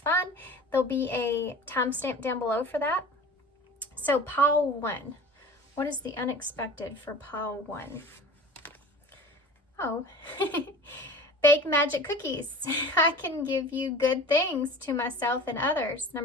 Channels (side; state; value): both; normal; correlation 0.39